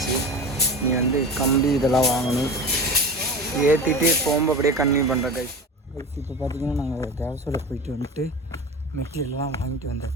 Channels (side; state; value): both; normal; correlation 0.31